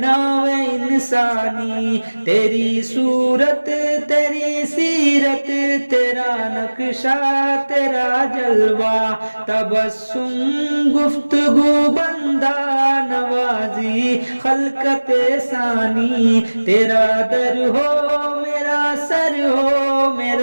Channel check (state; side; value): inverted; both; correlation -1.00